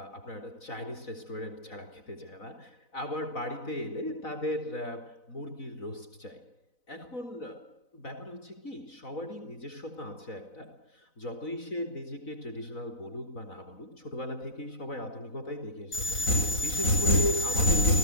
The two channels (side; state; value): right; late; 4.0 ms